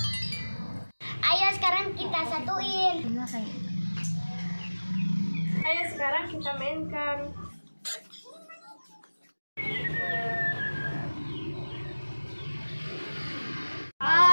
Ayo sekarang kita satuin. Ayo sekarang kita mainkan.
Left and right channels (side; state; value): both; inverted; correlation -1.00